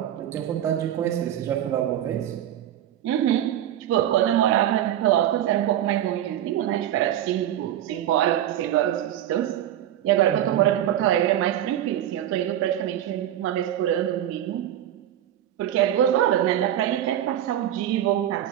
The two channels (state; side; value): quieter; left; 11.6 dB